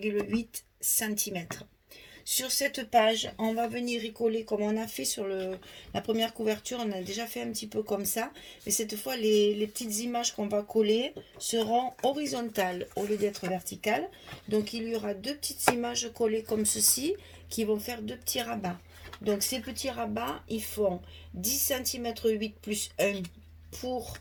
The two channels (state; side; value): identical; both; correlation 1.00